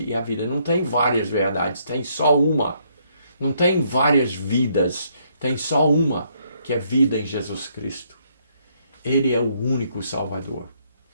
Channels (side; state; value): both; inverted; correlation -0.71